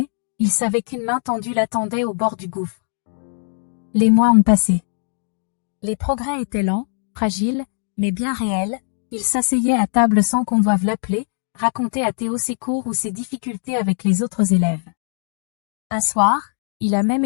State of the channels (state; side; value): silent; right; digital silence